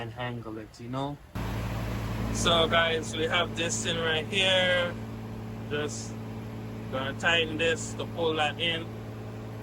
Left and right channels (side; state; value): both; identical; correlation 1.00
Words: it, you know? So guys, we have this thing right here. Just gonna tighten this to pull that in.